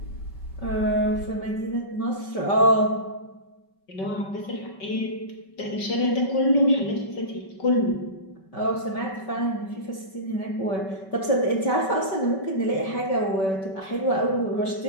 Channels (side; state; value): right; late; 5.2 ms